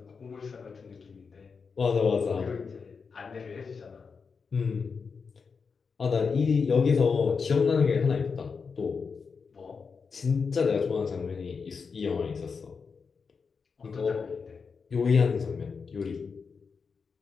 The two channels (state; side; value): quieter; right; 5.4 dB